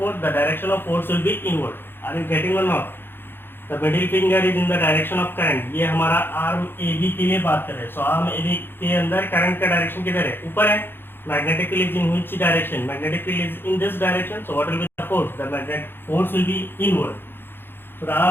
The direction of force will be inward. Are you getting or not? The middle finger is in the direction of current. ये हमारा arm AB के लिए बात कर रहे हैं. So arm AB के अंदर current का direction किधर है? ऊपर है. Magnetic field is in which direction? Magnetic field is in this direction. So what will be the force? The magnetic force will be inward. So the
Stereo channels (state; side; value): late; right; 0.10 ms